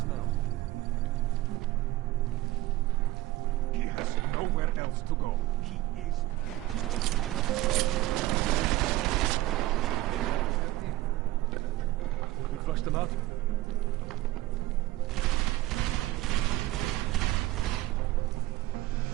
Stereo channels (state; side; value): quieter; left; 16.5 dB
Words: He has nowhere else to go. He is We flushed them out.